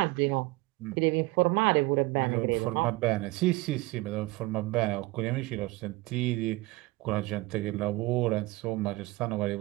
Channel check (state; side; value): quieter; left; 21.4 dB